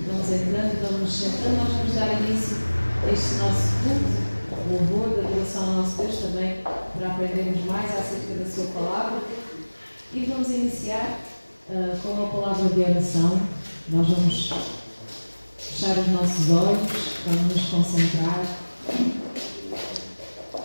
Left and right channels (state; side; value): inverted; both; correlation -1.00